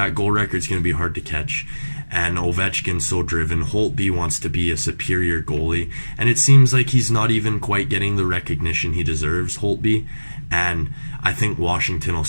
goal record's going to be hard to catch. And Ovechkin's so driven. Holtby wants to be a superior goalie, and it seems like he's not even quite getting the recognition he deserves, Holtby. And I think Washington will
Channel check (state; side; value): inverted; both; correlation -1.00